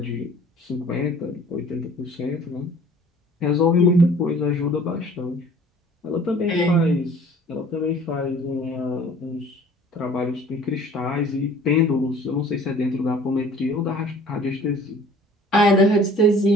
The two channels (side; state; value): both; normal; correlation 0.50